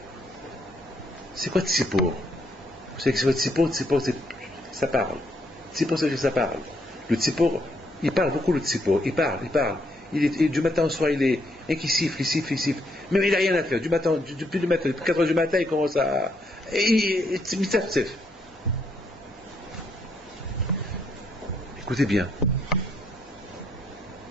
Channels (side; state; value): both; normal; correlation 0.74